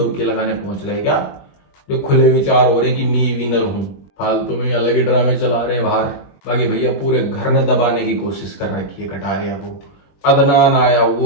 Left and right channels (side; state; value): right; late; 21 ms